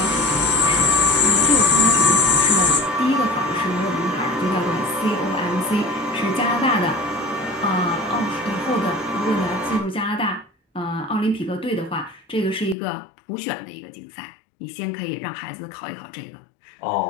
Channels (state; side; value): drops out; right; at 12.8 s